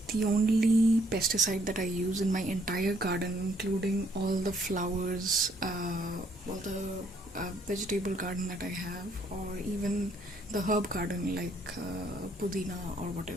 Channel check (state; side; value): normal; both; correlation 0.67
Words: the only pesticide that I use in my entire garden, including all the flowers, all the vegetable garden that I have, or even the herb garden like pudina or